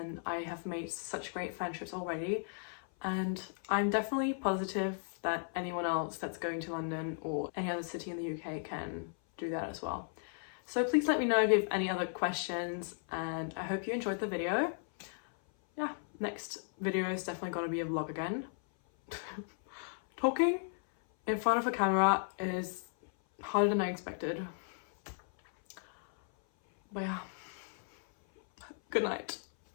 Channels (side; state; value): right; silent; 54 dB below the other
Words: I have made such great friendships already, and I'm definitely positive that anyone else that's going to London or any other city in the UK can do that as well. So please let me know if you have any other questions, and I hope you enjoyed the video. Yeah, next video is definitely going to be a vlog again. Talking in front of a camera is harder than I expected. But yeah, good night.